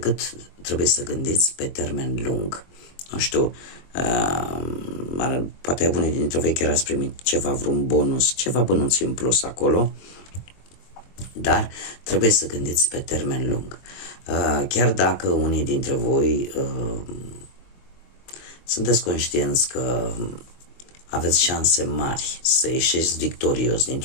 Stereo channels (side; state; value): right; late; 22 ms